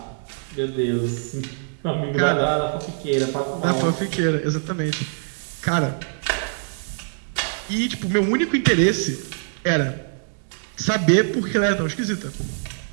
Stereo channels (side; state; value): left; silent; 63 dB below the other